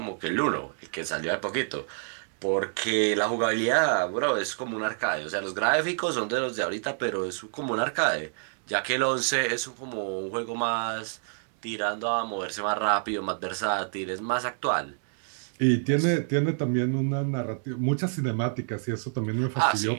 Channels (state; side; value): silent; left; digital silence